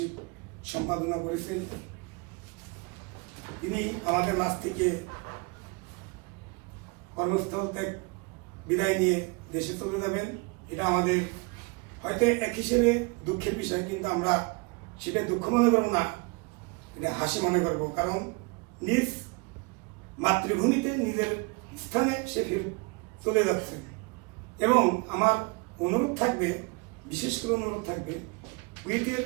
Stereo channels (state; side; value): quieter; left; 29.2 dB